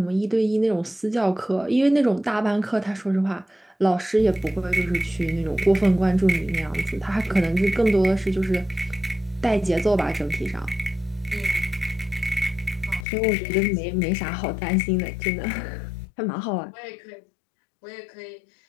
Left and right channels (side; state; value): right; drops out; at 13.1 s